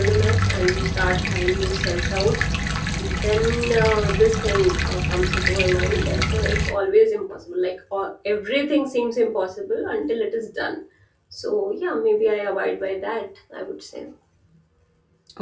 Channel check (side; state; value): both; identical; correlation 1.00